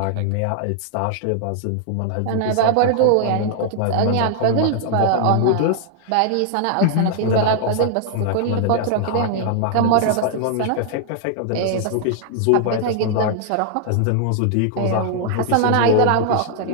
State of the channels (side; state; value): both; different; correlation 0.00